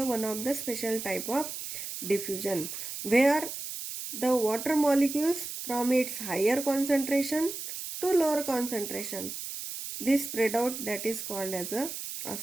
one of the special type of diffusion where the water molecules from its higher concentration to lower concentration this spread out, that is called as a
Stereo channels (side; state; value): right; noise; hiss, 7 dB below the sound